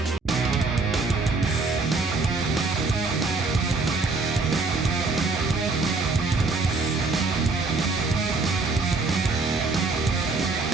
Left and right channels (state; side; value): quieter; left; 3.8 dB